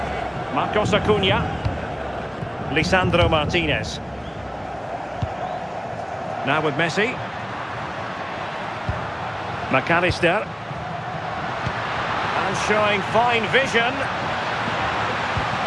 Marcos Acuna. Lisandro Martinez. Now with Messi. McAllister. And showing fine vision.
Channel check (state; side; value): identical; both; correlation 1.00